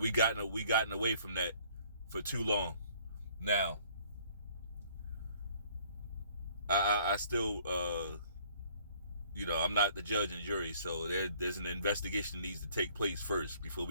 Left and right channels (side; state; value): both; inverted; correlation -0.59